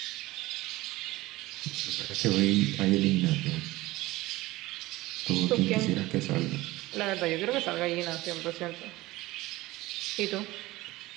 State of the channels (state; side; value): quieter; left; 18.8 dB